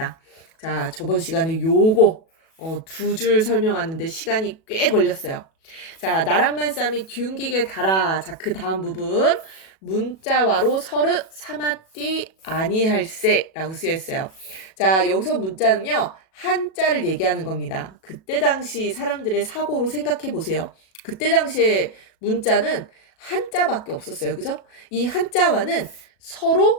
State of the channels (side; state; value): right; late; 37 ms